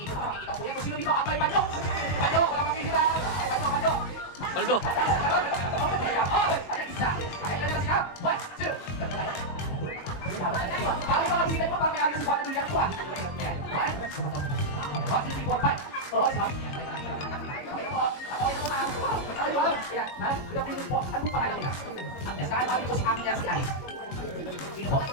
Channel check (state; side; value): late; right; 21 ms